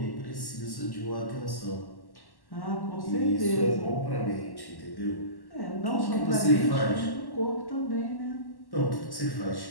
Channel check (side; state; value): right; late; 1.1 ms